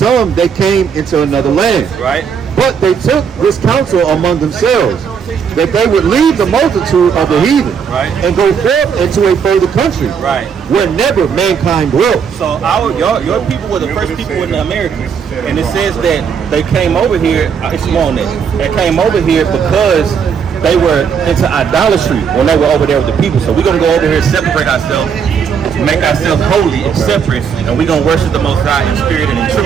they came into another land. Right. But they took this counsel among themselves, that they would leave the multitude of the heathen, right, and go forth into a further country, right, where never mankind dwelt. So your people were the first people in the Americas, and it says that they came over here. It's on it. They came over here because they were into idolatry when they were over there with the people. So we're gonna go over here, separate ourselves, make ourselves holy and separate, and we're gonna worship the Most High in spirit and in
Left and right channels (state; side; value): quieter; left; 6.8 dB